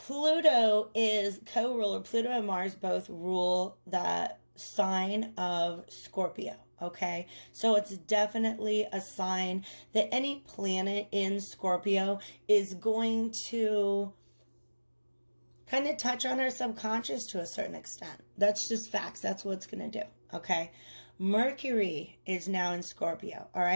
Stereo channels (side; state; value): both; inverted; correlation -1.00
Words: is co-ruler. Pluto and Mars both rule that sign of Scorpio. Okay, so it's definitely a sign that any planet in Scorpio is going to kind of touch on our subconscious to a certain extent. That's just facts. That's what it's going to do. Okay, Mercury is now in Scorpio. All